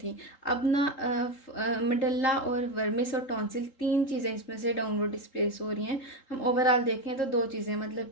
अब ना मेडल्ला और वर्मिस और टॉन्सिल, तीन चीज़ें इसमें से डाउनवर्ड डिस्प्लेस हो रही हैं। हम ओवरऑल देखें तो दो चीज़ें, मतलब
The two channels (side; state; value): right; late; 3.8 ms